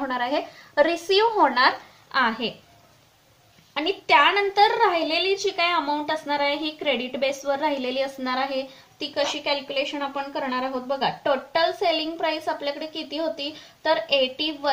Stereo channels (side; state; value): both; identical; correlation 1.00